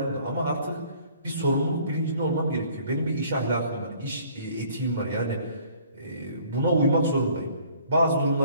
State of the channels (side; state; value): both; inverted; correlation -0.56